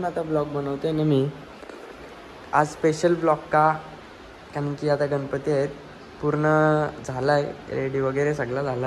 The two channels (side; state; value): both; identical; correlation 1.00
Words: आता ब्लॉग बनवते ना मी. आज स्पेशल ब्लॉग का, कारण की आता गणपती आहेत. पूर्ण झाला आहे, रेडी वगैरे सगळं